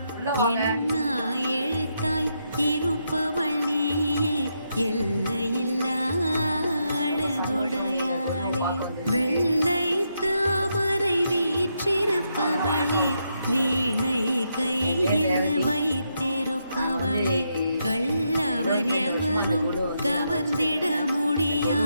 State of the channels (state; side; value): inverted; both; correlation -0.81